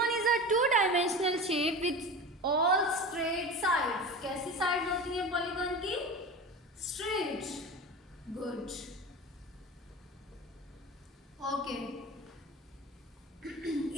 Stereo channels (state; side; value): normal; both; correlation 0.31